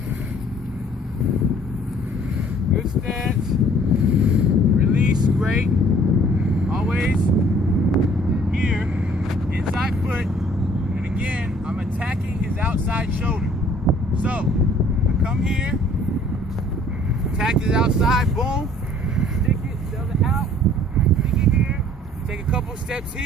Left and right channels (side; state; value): both; normal; correlation 0.56